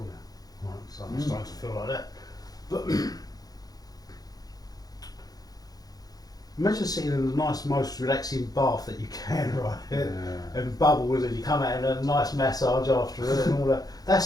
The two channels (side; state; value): right; late; 0.18 ms